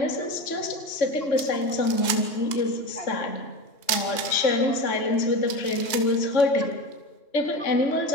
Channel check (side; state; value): right; late; 2.4 ms